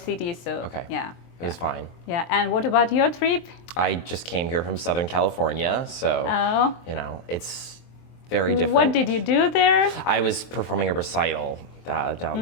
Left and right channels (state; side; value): late; right; 23 ms